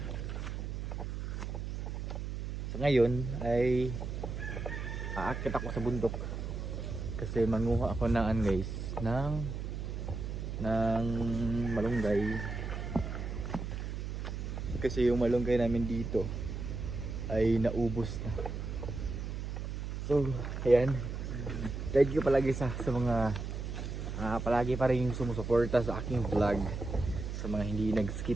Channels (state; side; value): noise; right; hum, 5 dB below the sound